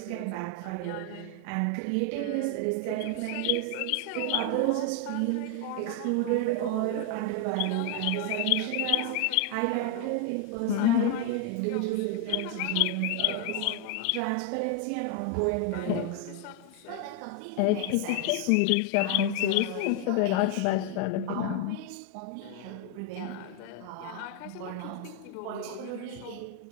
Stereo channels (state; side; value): different; both; correlation 0.00